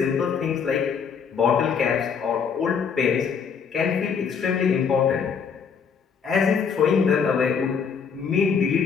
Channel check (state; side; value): quieter; right; 6.4 dB